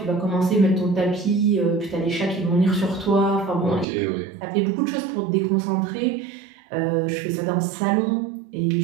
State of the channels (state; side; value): drops out; left; at 3.9 s